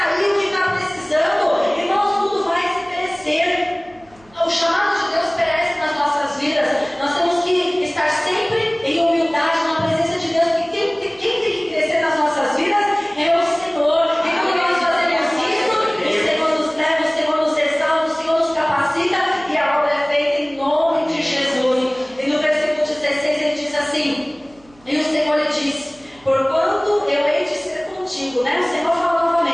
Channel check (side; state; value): right; noise; hum, 29 dB below the sound